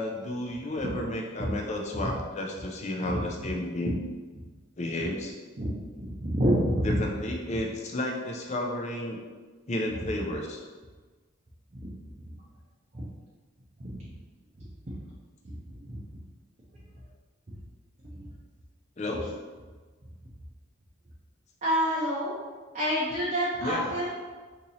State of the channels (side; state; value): both; normal; correlation 0.49